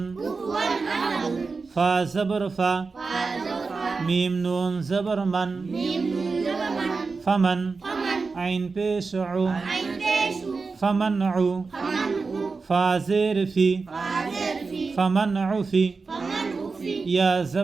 ফা জবর ফা মিম নুন জবর মান ফামান আইন পেশ উ ফামান উ ফা জের ফি ফামান উ ফি ইয়া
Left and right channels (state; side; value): quieter; left; 4.4 dB